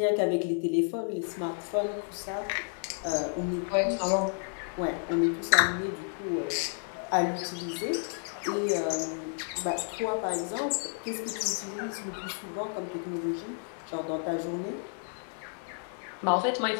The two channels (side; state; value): right; silent; 57 dB below the other